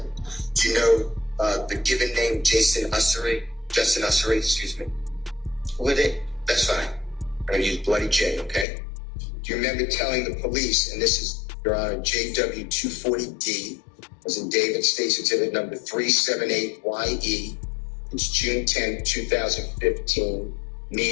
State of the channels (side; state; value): right; drops out; at 8.7 s